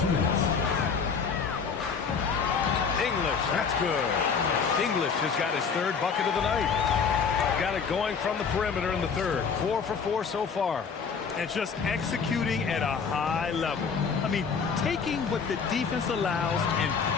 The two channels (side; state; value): right; quieter; 5.9 dB